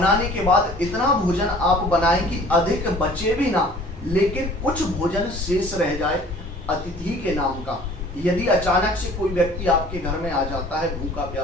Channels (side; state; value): both; normal; correlation 0.50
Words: के बाद इतना भोजन आप बनाएं कि अधिक बचे भी ना, लेकिन कुछ भोजन शेष रह जाए अतिथि के नाम का। यदि अचानक से कोई व्यक्ति आपके घर में आ जाता है भूखा